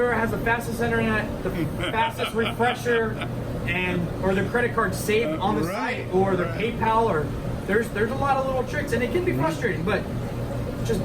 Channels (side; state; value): both; identical; correlation 1.00